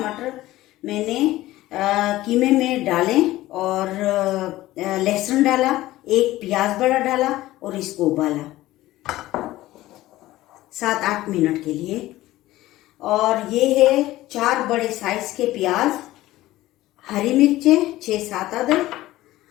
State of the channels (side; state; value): right; quieter; 16.4 dB